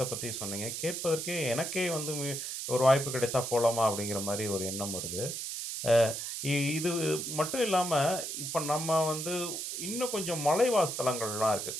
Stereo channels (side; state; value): right; noise; hiss, 5 dB below the sound